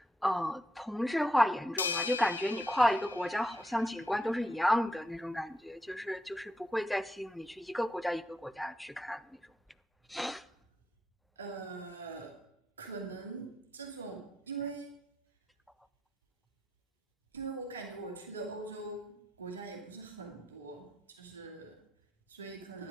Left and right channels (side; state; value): both; normal; correlation 0.81